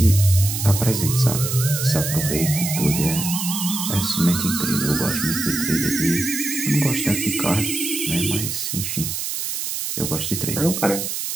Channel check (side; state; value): right; noise; hiss, 3 dB below the sound